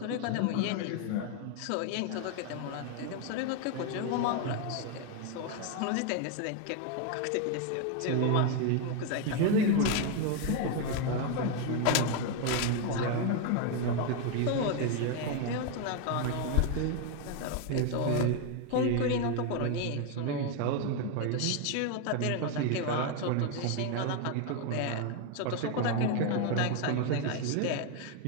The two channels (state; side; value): different; both; correlation 0.01